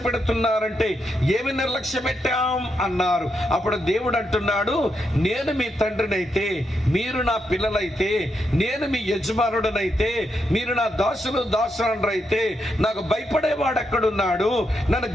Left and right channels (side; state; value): both; normal; correlation 0.82